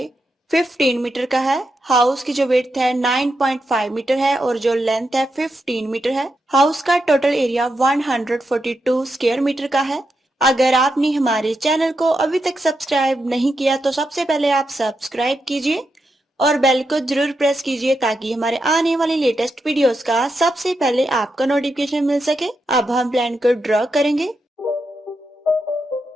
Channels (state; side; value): normal; both; correlation 0.85